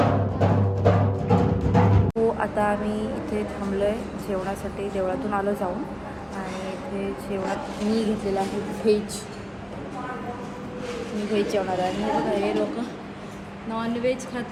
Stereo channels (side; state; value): both; identical; correlation 1.00